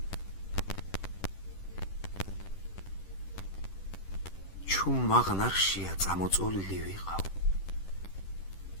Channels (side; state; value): right; late; 10 ms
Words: ჩუმ მაღნარშია წამოწოლილი ვიყავ,